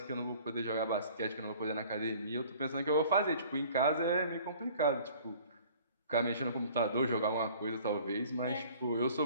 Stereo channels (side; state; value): both; inverted; correlation -0.50